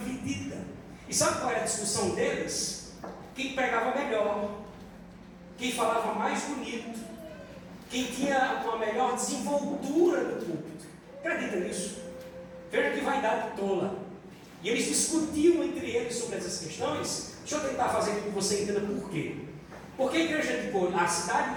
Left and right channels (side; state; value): both; identical; correlation 1.00